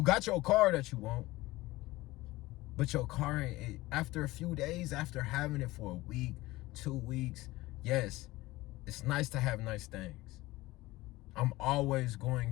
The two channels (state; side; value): quieter; right; 19.1 dB